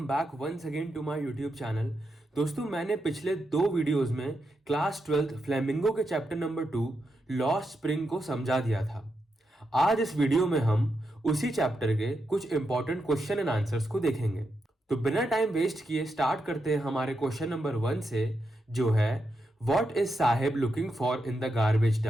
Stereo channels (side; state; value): both; normal; correlation 0.85